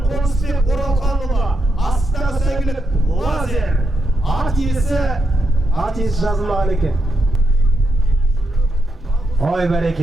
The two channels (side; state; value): both; normal; correlation 0.83